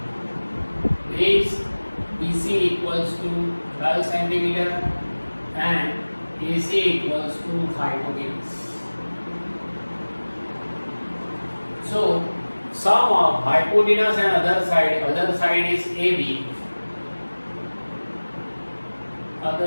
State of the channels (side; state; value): both; inverted; correlation -1.00